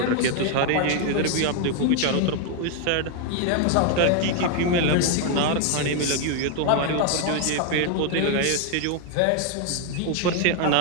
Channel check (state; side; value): different; both; correlation 0.01